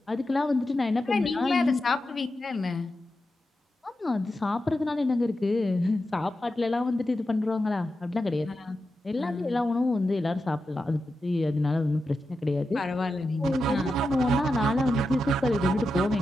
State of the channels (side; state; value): both; normal; correlation 0.89